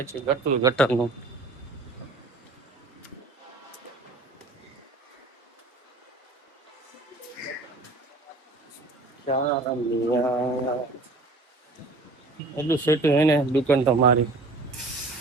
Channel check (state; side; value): quieter; left; 3.2 dB